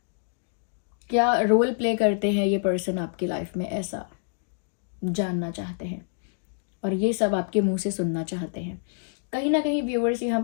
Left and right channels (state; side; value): silent; right; digital silence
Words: क्या रोल प्ले करते हैं ये पर्सन आपकी लाइफ में, ऐसा जानना चाहते हैं। और ये सब आपके मुंह से सुनना चाहते हैं। कहीं ना कहीं व्यूअर्स, यहाँ